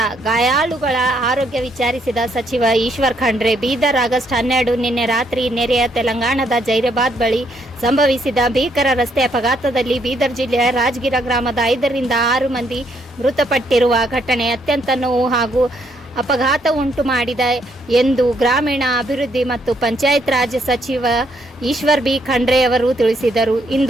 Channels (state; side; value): normal; both; correlation 0.72